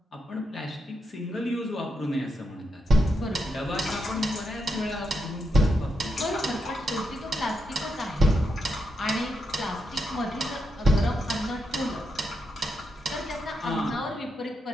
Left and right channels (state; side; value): normal; both; correlation 0.83